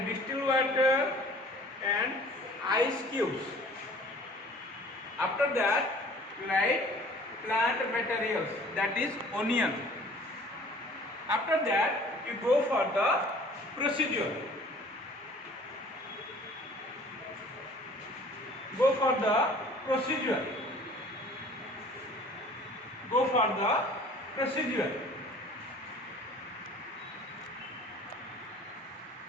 distilled water and ice cubes. After that, write plant materials, that is onion. After that, you go for the procedure. Go for the procedure.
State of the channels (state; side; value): normal; both; correlation 0.50